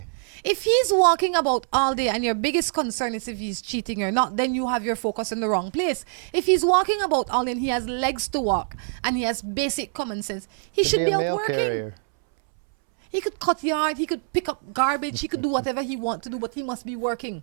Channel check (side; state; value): left; silent; 62 dB below the other